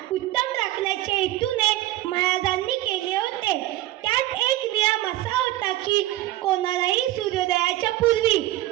उत्तम राखण्याच्या हेतूने महाराजांनी केले होते. त्यात एक नियम असा होता की कोणालाही सूर्योदयाच्या पूर्वी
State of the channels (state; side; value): quieter; left; 15.9 dB